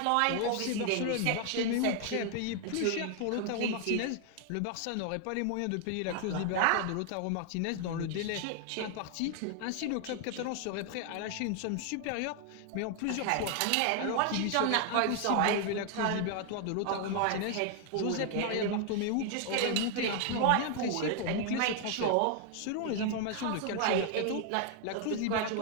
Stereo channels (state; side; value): different; both; correlation 0.00